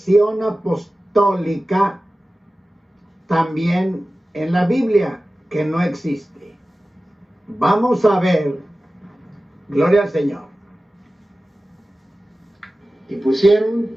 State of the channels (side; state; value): both; normal; correlation 0.96